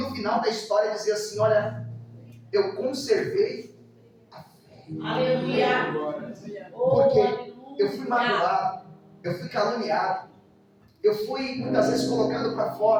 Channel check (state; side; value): identical; both; correlation 1.00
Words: final da história dizer assim: olha, eu conservei a fé. Aleluia! Porque eu fui magoado, eu fui caluniado, eu fui muitas vezes colocado para